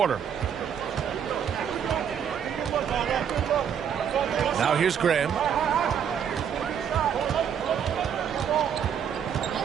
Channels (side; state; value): left; quieter; 8.2 dB